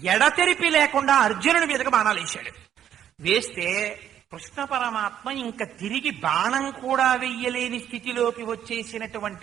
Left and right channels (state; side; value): quieter; left; 10.1 dB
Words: ఎడతెరిపి లేకుండా అర్జునుడి మీదకి బాణాలు వేశాడు. వేస్తే కృష్ణ పరమాత్మ ఇంకా తిరిగి బాణం కూడా వెయ్యలేని స్థితిలోకి